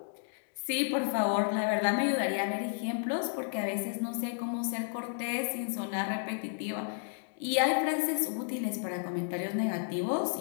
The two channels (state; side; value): silent; right; digital silence